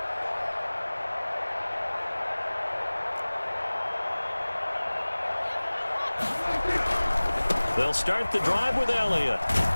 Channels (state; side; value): inverted; both; correlation -1.00